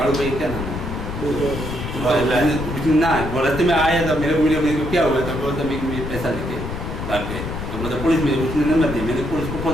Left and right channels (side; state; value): left; noise; rumble, 6 dB below the sound